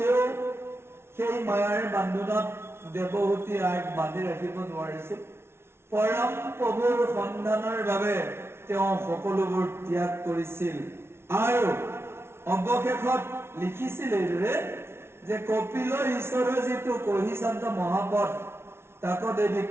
সেই মায়াৰ বান্ধোনত দেৱহূতি আইক বান্ধি ৰাখিব নোৱাৰিছিল। পৰম প্ৰভুৰ সন্ধানৰ বাবে তেওঁ সকলোবোৰ ত্যাগ কৰিছিল আৰু অৱশেষত লিখিছিল এইদৰে যে কপিল ঈশ্বৰৰ যিটো কহিচান্ত মহাপথ তাক দেৱী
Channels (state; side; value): late; left; 0.12 ms